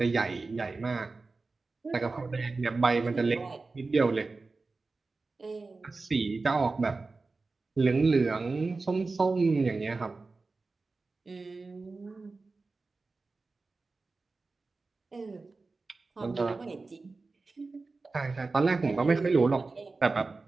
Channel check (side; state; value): left; quieter; 3.8 dB